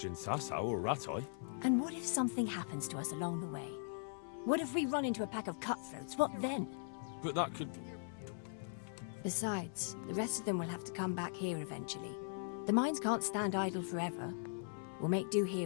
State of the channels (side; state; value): right; silent; 51 dB below the other